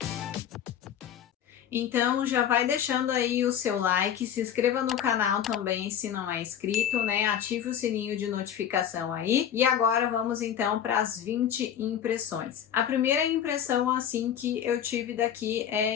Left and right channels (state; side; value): quieter; right; 9.5 dB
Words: Então já vai deixando aí o seu like, se inscreva no canal também se não é inscrito, né? Ative o sininho de notificação aí. E agora vamos então para as 20 impressões. A primeira impressão assim que eu tive daqui é